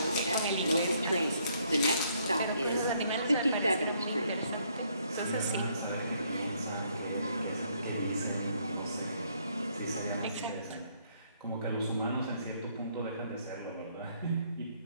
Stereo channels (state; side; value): inverted; both; correlation -0.69